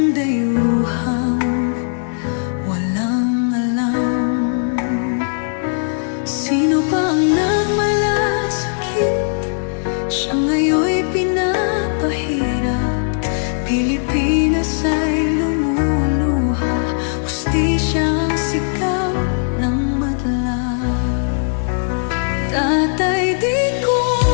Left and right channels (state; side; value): silent; right; 60 dB below the other